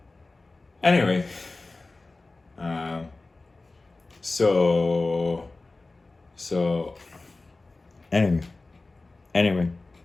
Anyway, um, so so anyway, anyway,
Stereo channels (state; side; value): quieter; right; 3.3 dB